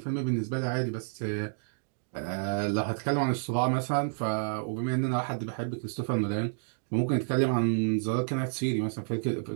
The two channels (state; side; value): silent; left; digital silence